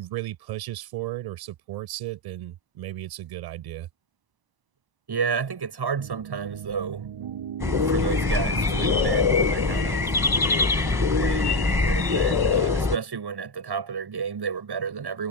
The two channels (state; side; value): late; left; 1.0 ms